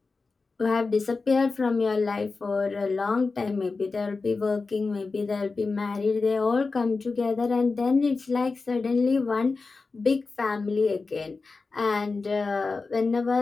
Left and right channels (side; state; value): right; quieter; 4.1 dB